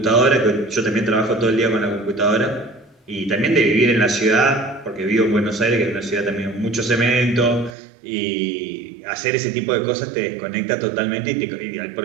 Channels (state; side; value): drops out; left; at 7.8 s